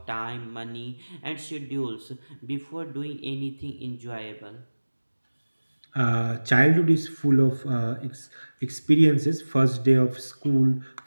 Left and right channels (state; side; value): inverted; both; correlation -1.00